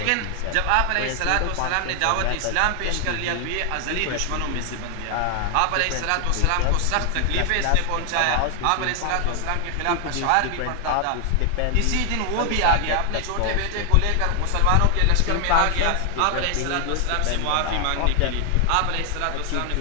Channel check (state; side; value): different; both; correlation 0.00